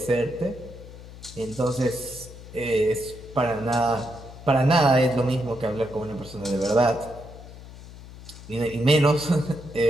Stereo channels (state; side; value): noise; left; hum, 16 dB below the sound